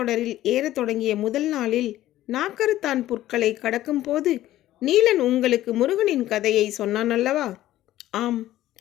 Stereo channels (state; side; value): quieter; right; 14.3 dB